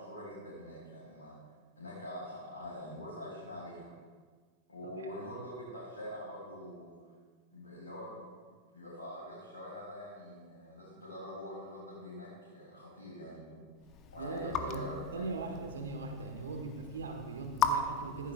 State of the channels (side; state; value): both; normal; correlation -0.01